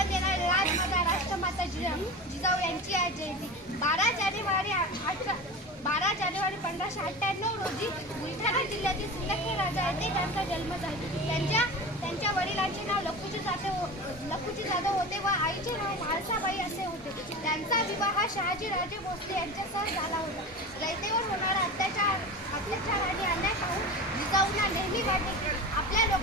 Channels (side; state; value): both; normal; correlation 0.29